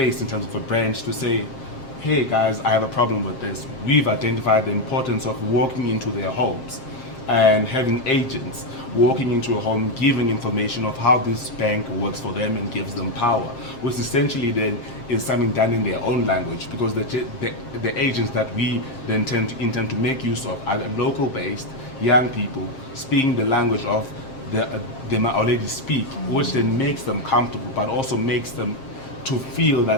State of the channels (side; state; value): right; late; 7.5 ms